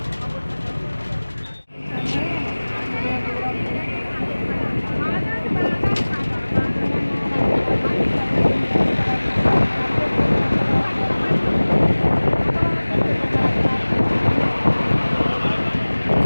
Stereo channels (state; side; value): inverted; both; correlation -1.00